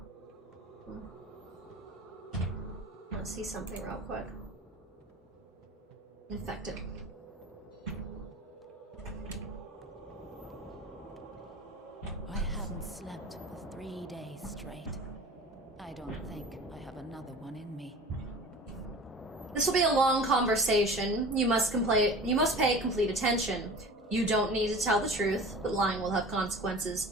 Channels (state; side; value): normal; both; correlation 0.39